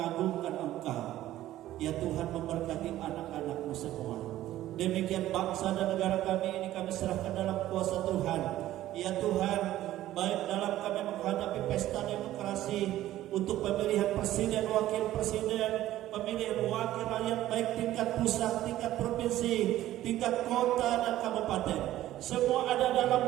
Engkau. Ya Tuhan, memberkati anak-anak-Mu semua. Demikian bangsa dan negara kami ini kami serahkan dalam kuasa Tuhan. Ya Tuhan, baik dalam kami menghadapi pesta demokrasi untuk pemilihan presiden, wakil presiden, pemilihan wakil rakyat, baik tingkat pusat, tingkat provinsi, tingkat kota dan kabupaten. Semua ada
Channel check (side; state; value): left; quieter; 14.1 dB